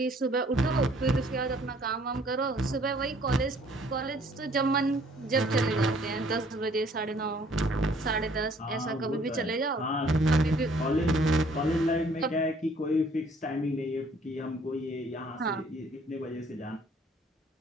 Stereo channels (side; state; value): both; normal; correlation 0.60